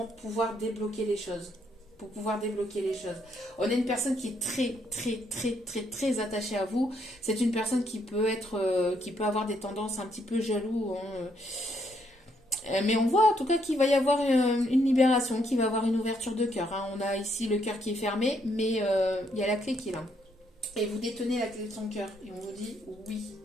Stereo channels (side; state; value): both; normal; correlation 0.73